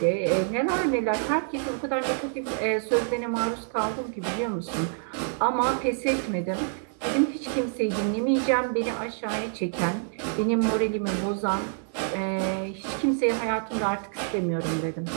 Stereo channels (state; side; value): silent; left; digital silence